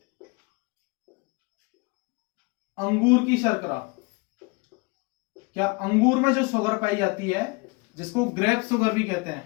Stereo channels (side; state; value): right; quieter; 28.7 dB